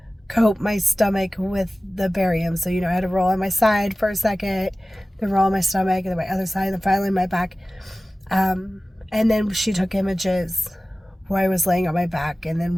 coat my stomach with the barium. So, I had to roll on my side for a second, then roll on my stomach, and then my other side, and then finally my back. And then she took images where I was laying on my back, and then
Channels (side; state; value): both; normal; correlation 0.96